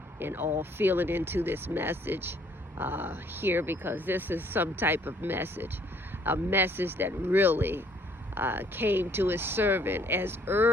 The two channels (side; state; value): both; normal; correlation 0.62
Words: all feeling into this message here, because this is some type of message, a message that really came to his servant as